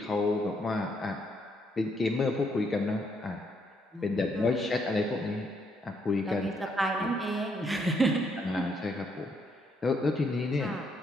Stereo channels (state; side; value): normal; both; correlation 0.73